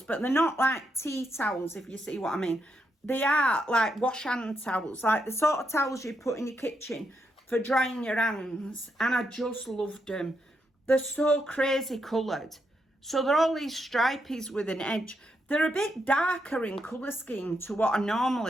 but they're not like tea towels, if you see what I mean. They are like wash hand towels, like the sort of towels you put in your kitchen for drying your hands. And I just loved them. They're so crazy coloured. So they're all these stripies with an edge. They're a bit darker in colour scheme to what I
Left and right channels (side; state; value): both; normal; correlation 0.81